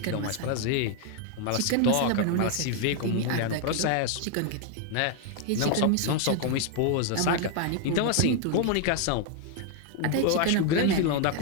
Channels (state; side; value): different; both; correlation 0.01